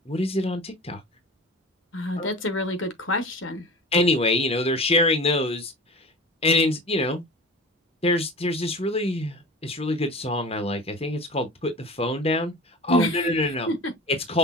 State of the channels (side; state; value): both; normal; correlation 0.36